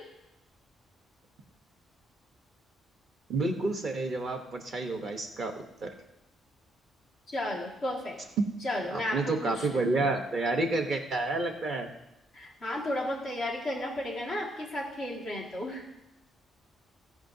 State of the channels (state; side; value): normal; both; correlation 0.73